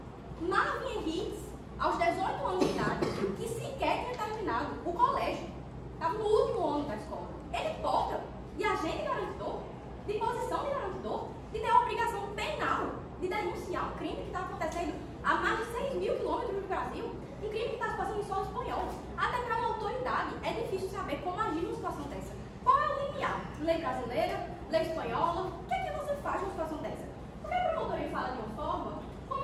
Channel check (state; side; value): identical; both; correlation 1.00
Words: Marvin Henriques, aos 18 anos de idade, que sequer tinha terminado o colégio, estava no último ano da escola, ele porta de agente garantidor, de posição de garantidor, de ter a obrigação penal de denunciar um crime que está acontecendo a mais de 6 mil quilômetros do Brasil, um crime que está se passando em solo espanhol. Até para uma autoridade é difícil saber como agir numa situação dessa. Qual é o limiar? Lei brasileira? Lei espanhola? O que é que você faz numa situação dessa? Porque a promotoria fala de uma forma